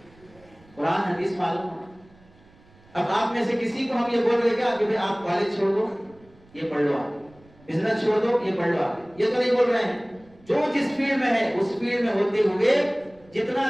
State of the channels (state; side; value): noise; right; rumble, 28 dB below the sound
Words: قرآن حدیث معلوم ہو. اب آپ میں سے کسی کو ہم یہ بول رہے کیا کہ آپ کالج چھوڑ دو یہ پڑھ لو، آپ بزنس چھوڑ دو یہ پڑھ لو، آپ یہ تو نہیں بول رہے ہیں. جو جس فیلڈ میں ہے اس فیلڈ میں ہوتے ہوئے جتنا